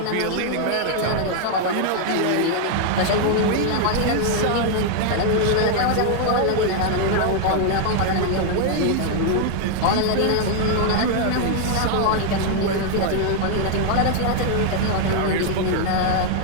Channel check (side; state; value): both; different; correlation 0.00